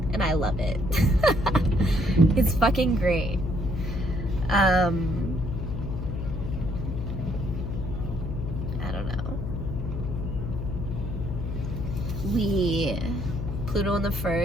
And I love it. It's fucking great. I don't know. Pluto in the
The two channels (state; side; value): noise; left; hum, 4 dB below the sound